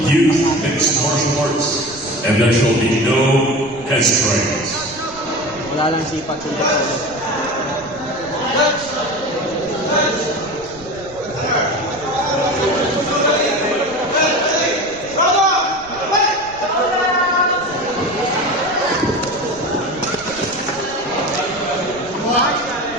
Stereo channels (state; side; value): noise; right; rumble, 20 dB below the sound